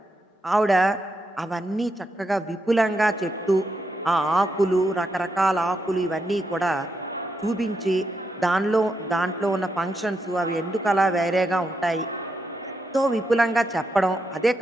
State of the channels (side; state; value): both; normal; correlation 0.82